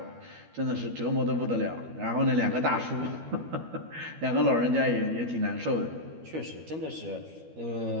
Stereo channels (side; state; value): left; late; 13 ms